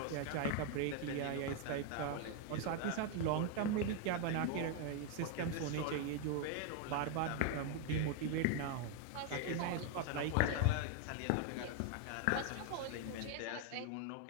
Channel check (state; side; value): different; both; correlation 0.01